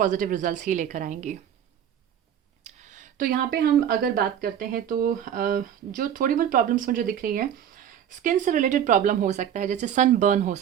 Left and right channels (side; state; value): left; quieter; 9.5 dB